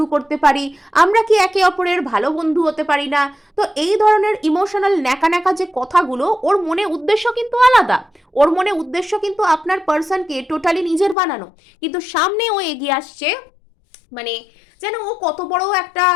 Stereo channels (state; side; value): drops out; right; at 11.2 s